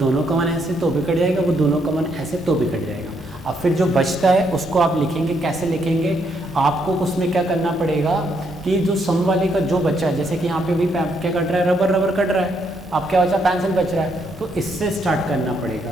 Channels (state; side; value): normal; both; correlation 0.75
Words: कॉमन ऐसे तो भी कट जाएगा, वो दोनों कॉमन ऐसे तो भी कट जाएगा। अब फिर जो बचता है उसको आप लिखेंगे, कैसे लिखेंगे, आपको उसमें क्या करना पड़ेगा कि जो सम वाले का जो बचा है, जैसे कि यहाँ पे भी क्या कट रहा है, रबर रबर कट रहा है, अब क्या बचा, पेंसिल बच रहा है, तो इससे स्टार्ट करना